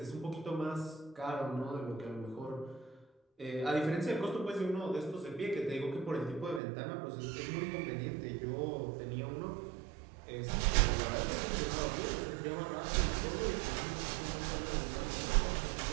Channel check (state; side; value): drops out; left; at 6.6 s